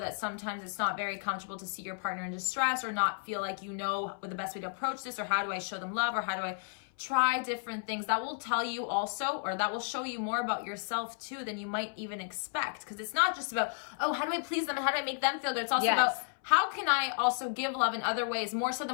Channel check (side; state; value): right; silent; 56 dB below the other